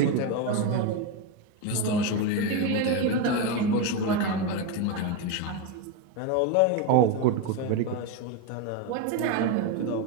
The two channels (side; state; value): both; different; correlation 0.03